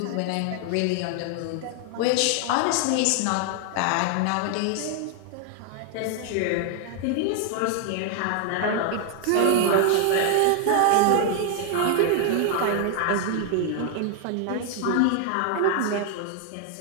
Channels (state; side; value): different; both; correlation 0.00